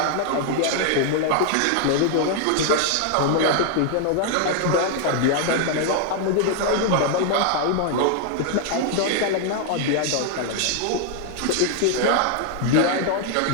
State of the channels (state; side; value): different; both; correlation 0.00